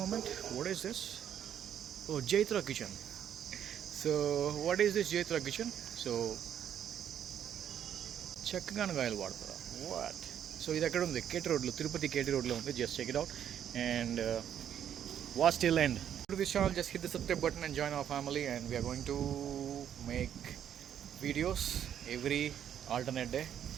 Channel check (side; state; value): left; quieter; 9.6 dB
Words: what is this? Oh, Jaitra Kitchen. So what is this Jaitra Kitchen? So చెక్కగానగాయలు వాడతారా, what? So ఇది ఎక్కడ ఉంది, కేటీ రోడ్లో, తిరుపతి కేటీ రోడ్లో ఉంది. Just check it out and watch till end. To this channel, just hit the subscribe button and join our family, and we are going to make videos every alternate day,